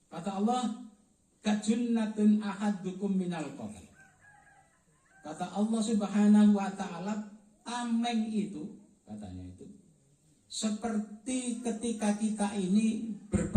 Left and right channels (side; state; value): both; identical; correlation 1.00